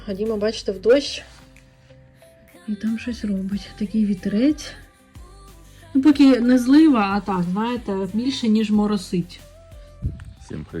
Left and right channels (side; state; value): both; identical; correlation 1.00